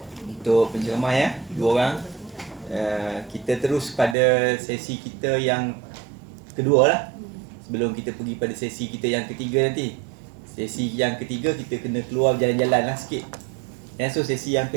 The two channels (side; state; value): left; drops out; at 4.2 s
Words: Untuk penceramah ya, dua orang. Kita terus pada sesi kita yang kedua lah. Sebelum kita pergi pada sesi kita yang ketiga nanti. Sesi yang ketiga kita kena keluar jalan-jalan lah sikit. So sesi yang